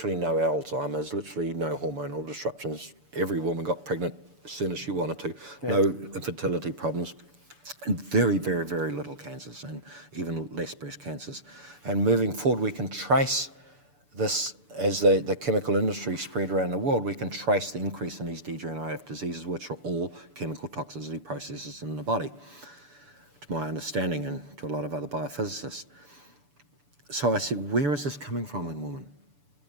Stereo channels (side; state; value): left; late; 6.9 ms